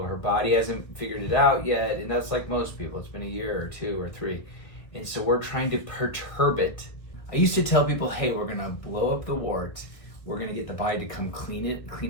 her body hasn't figured it out yet, and that's like most people. It's been a year or 2 or 3. And so we're trying to perturb it. I used to tell people, hey, we're gonna blow up the wart. We're gonna get the body to come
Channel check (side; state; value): right; late; 1.7 ms